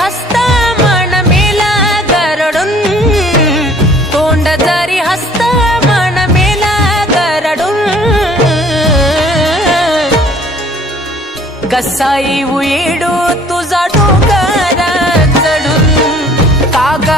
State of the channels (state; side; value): normal; both; correlation 0.54